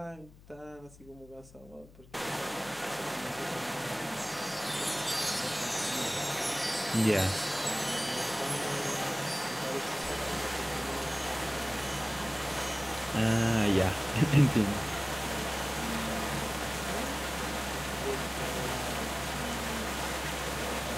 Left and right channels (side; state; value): left; noise; hum, 22 dB below the sound